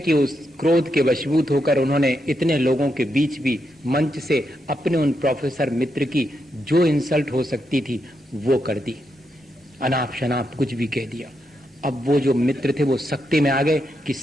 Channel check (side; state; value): both; normal; correlation 0.82